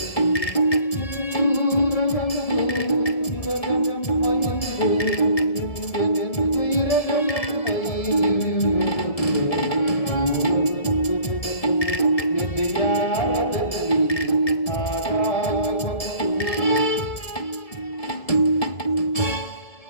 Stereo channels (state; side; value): late; right; 1.7 ms